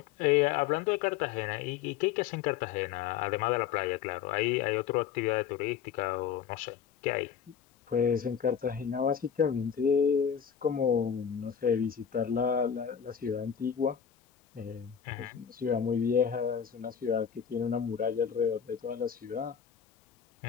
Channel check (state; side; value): quieter; right; 8.1 dB